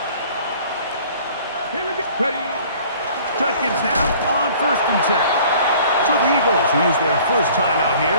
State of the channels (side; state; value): both; inverted; correlation -0.51